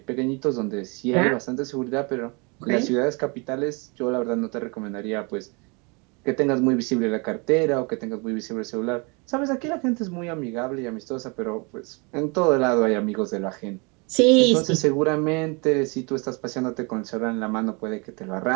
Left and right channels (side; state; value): left; quieter; 30.8 dB